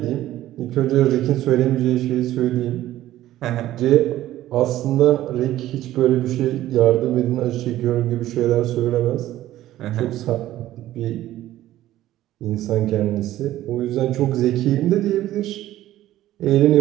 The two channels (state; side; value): quieter; left; 14.2 dB